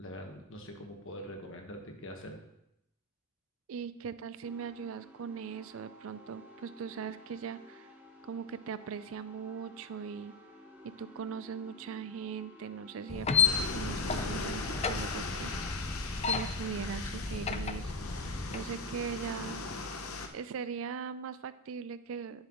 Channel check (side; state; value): both; normal; correlation 0.10